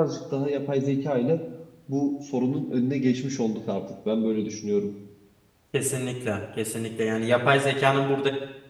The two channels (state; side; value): identical; both; correlation 1.00